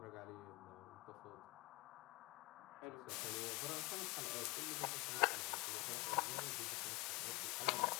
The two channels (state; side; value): quieter; right; 23.6 dB